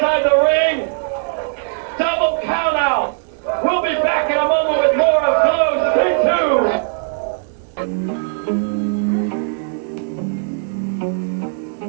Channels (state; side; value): silent; left; digital silence